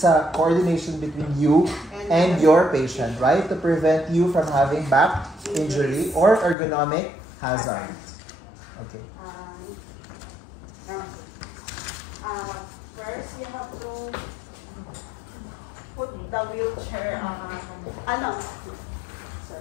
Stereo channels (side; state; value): right; drops out; at 6.6 s